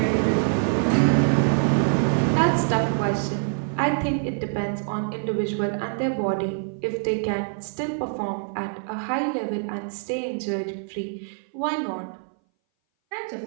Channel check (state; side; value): silent; left; 59 dB below the other